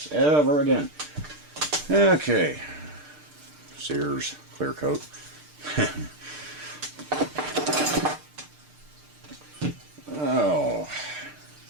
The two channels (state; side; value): late; left; 6.6 ms